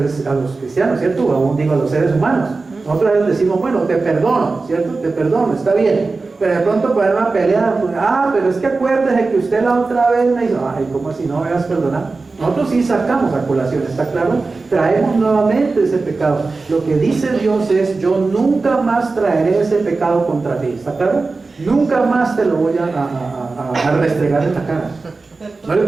cristianos, ¿cierto? O aún digo a los seres humanos. Nosotros a veces decimos: bueno, te perdono, ¿cierto? Te perdono, está bien. Pero de pronto para una pelea, pues, pero es que acuérdese que usted la otra vez me hizo, ¿cómo así no me vas a perdonar? Nosotros sí sacamos a colación, ¿está claro? Traemos nuevamente ese pecado. Lo que dice Dios es: yo nunca más traeré ese pecado contra ti, ¿está claro? Nunca más te lo voy a restregar en la cara. ¿No le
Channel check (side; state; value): left; quieter; 3.8 dB